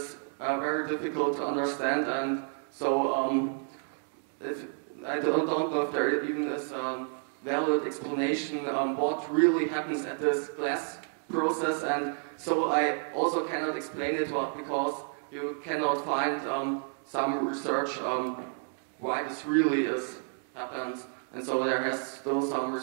very difficult to understand. And so, if I don't know if there even is a valid explanation what really happens at this glass process, and so I also cannot explain it because you cannot find some research why this really happens. And so there has still some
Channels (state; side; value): silent; left; 56 dB below the other